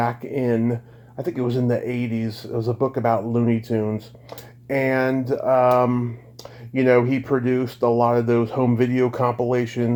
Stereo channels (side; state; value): both; identical; correlation 1.00